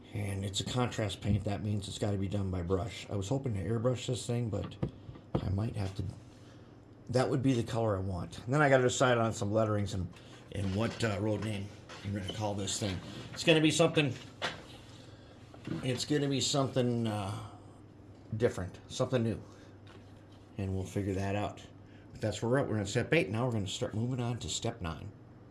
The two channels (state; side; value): identical; both; correlation 1.00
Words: And it's a contrast paint. That means it's got to be done by brush. I was hoping to airbrush this thing, but I might have to. That would be the color I want. And then I got to decide on some letterings and what road name I'm going to call this thing. It's going to be something. It's going to be something different, something new, and we'll figure that out. But that's where we're at. We're on step 8. Now we're going to start moving on to step 9.